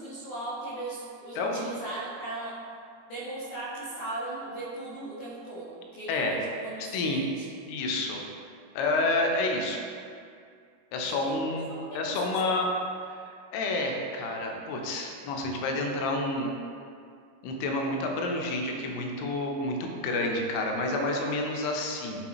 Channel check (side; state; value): right; late; 22 ms